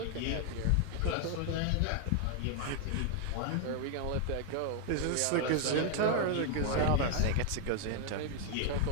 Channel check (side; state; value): both; different; correlation 0.00